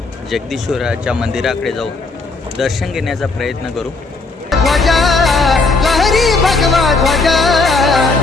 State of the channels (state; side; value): quieter; right; 3.8 dB